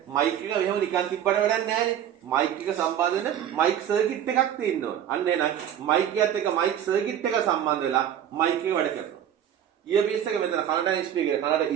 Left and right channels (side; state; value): left; quieter; 10.0 dB